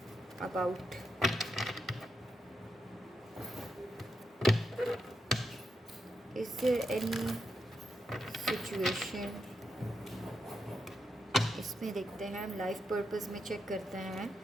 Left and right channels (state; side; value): normal; both; correlation 0.84